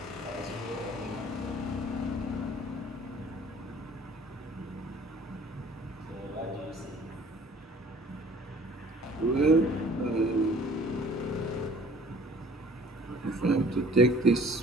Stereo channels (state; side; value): normal; both; correlation 0.52